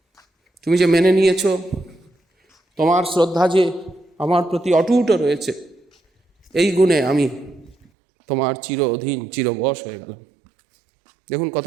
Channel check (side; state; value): left; drops out; at 7.8 s